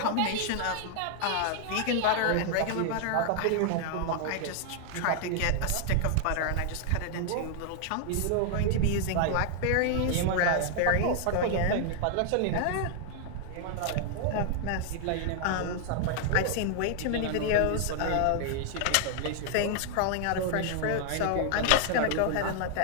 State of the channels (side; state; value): both; different; correlation 0.00